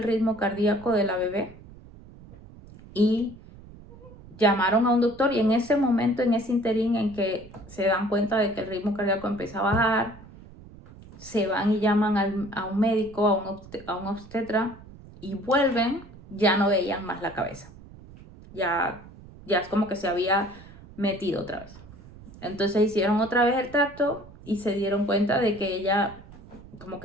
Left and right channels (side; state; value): right; noise; rumble, 19 dB below the sound